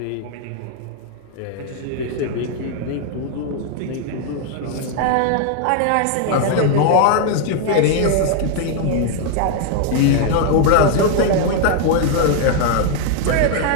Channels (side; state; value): both; different; correlation 0.00